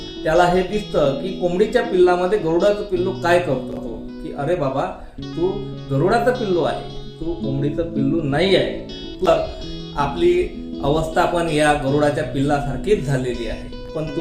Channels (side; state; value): both; identical; correlation 1.00